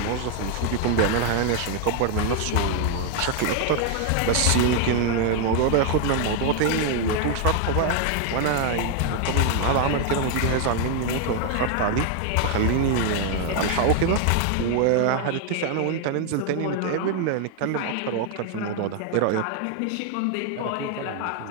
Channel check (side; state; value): both; different; correlation 0.00